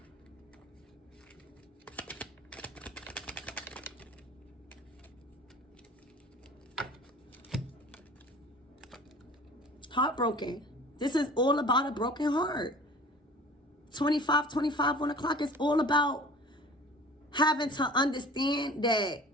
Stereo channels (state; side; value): normal; both; correlation 0.44